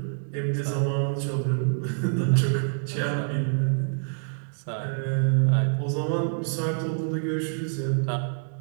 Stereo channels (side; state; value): left; silent; digital silence